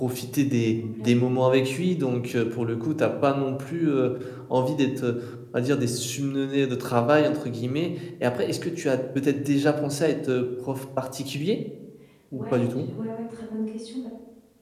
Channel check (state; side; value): identical; both; correlation 1.00